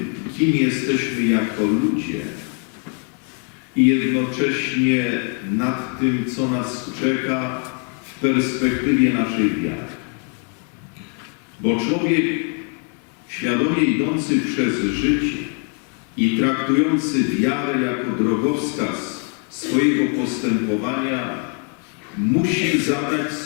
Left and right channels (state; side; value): quieter; right; 36.1 dB